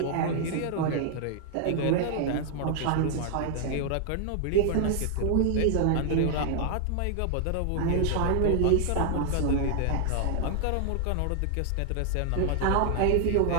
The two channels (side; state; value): both; different; correlation 0.00